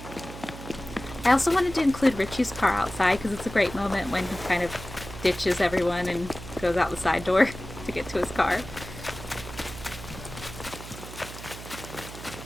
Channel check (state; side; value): noise; right; hum, 13 dB below the sound